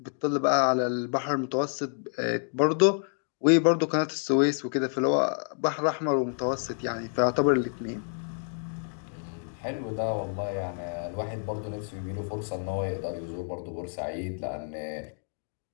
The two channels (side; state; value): right; silent; 59 dB below the other